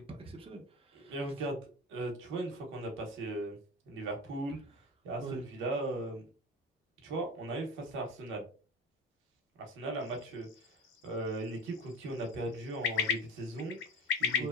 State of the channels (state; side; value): normal; both; correlation 0.30